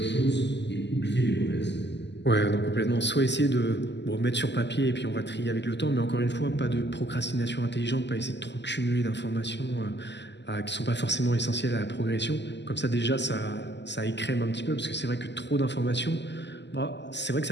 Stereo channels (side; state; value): right; late; 0.51 ms